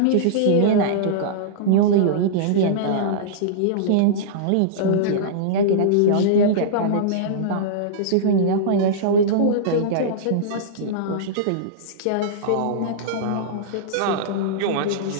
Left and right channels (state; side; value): different; both; correlation -0.03